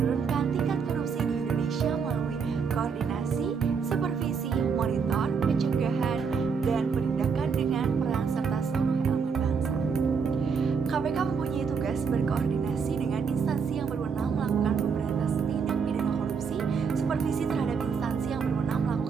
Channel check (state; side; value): quieter; left; 5.8 dB